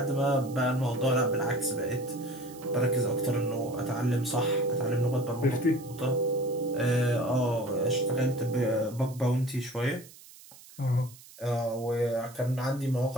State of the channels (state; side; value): noise; right; hiss, 21 dB below the sound